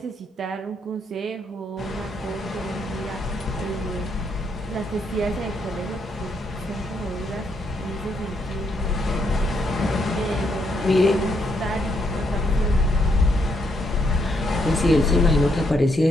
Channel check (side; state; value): both; normal; correlation 0.76